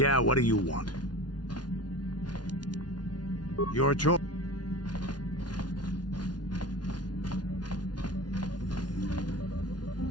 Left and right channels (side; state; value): right; late; 0.69 ms